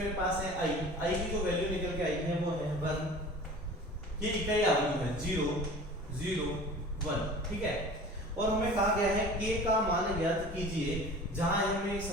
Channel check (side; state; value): both; normal; correlation 0.41